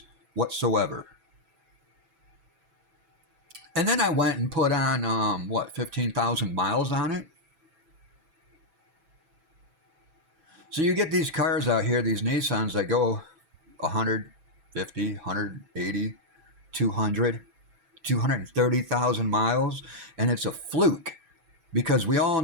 whatsoever. And then I went and put on, 15,000 miles on it? So you get these cars out here, these Nissans that go 150, 180, 200, 230,000 miles, and it's a fluke because we all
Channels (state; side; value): late; left; 6.1 ms